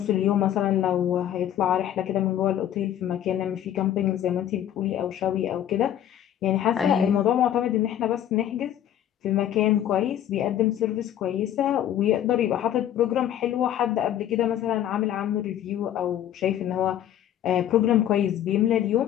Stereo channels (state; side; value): quieter; right; 11.0 dB